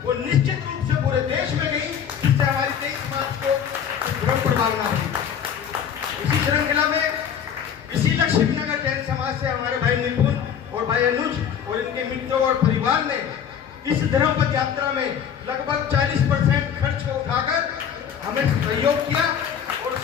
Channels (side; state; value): right; quieter; 8.3 dB